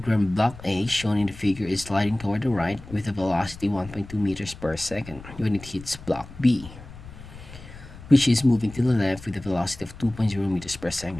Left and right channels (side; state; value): left; noise; rumble, 16 dB below the sound